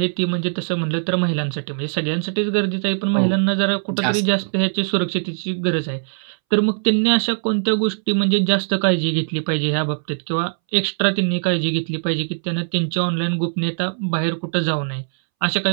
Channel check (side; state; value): left; silent; 65 dB below the other